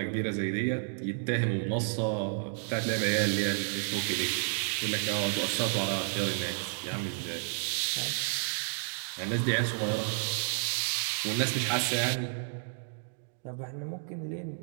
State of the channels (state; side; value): silent; left; 57 dB below the other